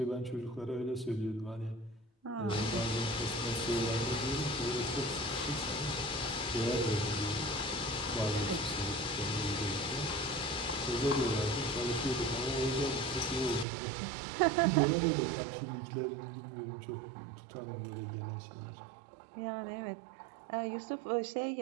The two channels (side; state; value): left; drops out; at 13.7 s